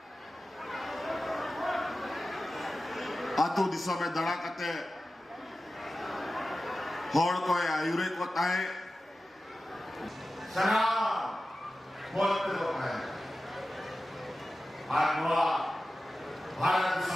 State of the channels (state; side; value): normal; both; correlation 0.94